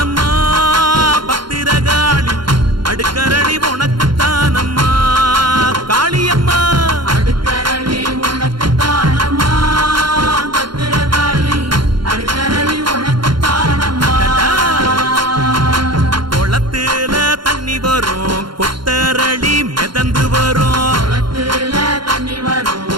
பத்திரகாளி அடுக்கரளி உனக்கு தானம்மா காளியம்மா அடுக்கரளி உனக்கு தானம்மா பத்திரகாளி அடுக்கரளி உனக்கு தானம்மா குளத்துல தண்ணி வரும் கொத்தரளி மிதந்து வரும் குளத்துல தண்ணி வரும்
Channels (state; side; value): late; left; 0.72 ms